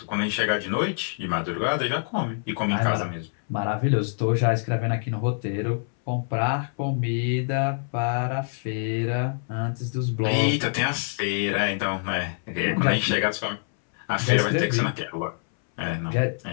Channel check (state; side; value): silent; right; 61 dB below the other